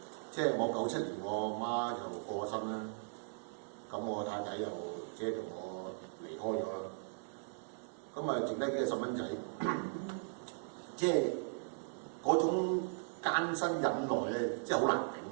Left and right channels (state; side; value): silent; left; digital silence